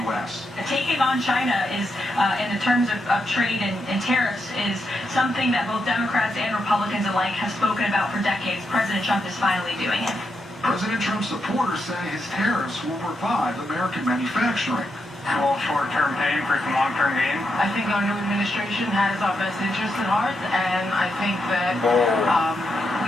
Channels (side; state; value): both; normal; correlation 0.83